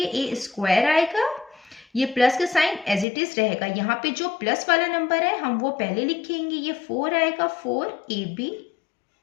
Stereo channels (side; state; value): right; drops out; at 3.1 s